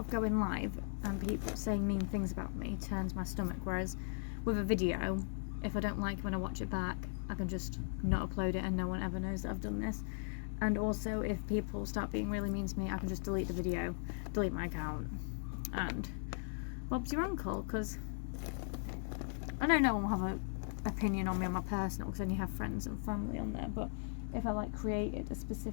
going live and people saying mean things about me turns my stomach, whereas with a video, if I don't like it when I watch it back, I can just not upload it and no one ever knows that I've done this. And also, if people start being really mean to me, I can just delete the video, delete my account, and Bob's your uncle, because I know no one will have an opinion on me on my personal, because I only have friends and family on there, but if I like created a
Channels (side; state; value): right; silent; digital silence